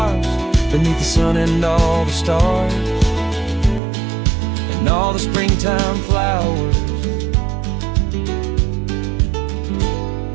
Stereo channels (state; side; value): drops out; left; at 3.8 s